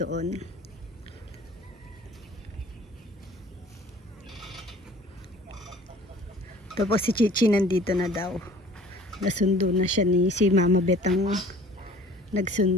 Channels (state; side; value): normal; both; correlation 0.49